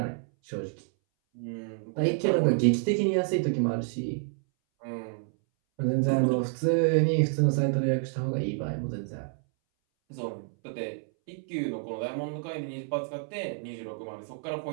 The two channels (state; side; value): silent; left; 59 dB below the other